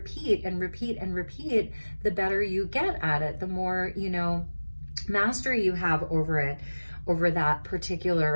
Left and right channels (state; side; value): inverted; both; correlation -1.00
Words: and repeat and repeat, the better you get at it, the more, you know, mastery you have over it, over that